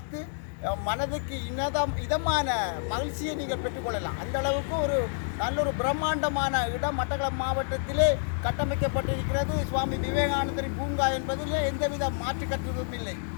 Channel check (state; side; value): silent; right; digital silence